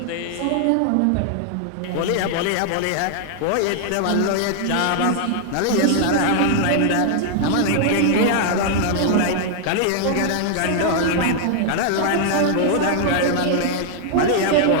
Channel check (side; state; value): both; different; correlation 0.00